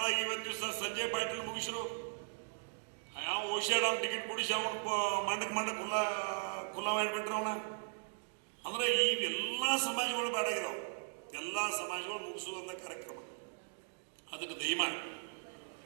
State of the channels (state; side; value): silent; left; digital silence